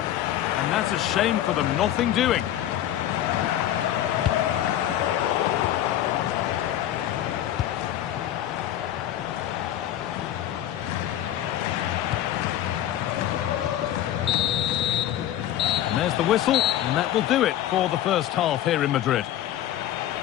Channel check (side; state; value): right; quieter; 12.2 dB